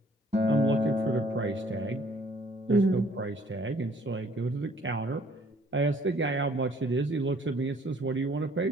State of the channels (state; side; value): normal; both; correlation 0.59